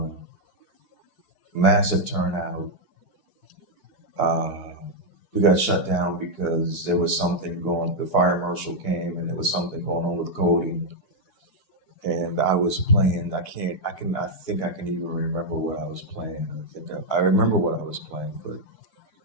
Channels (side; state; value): right; late; 4.7 ms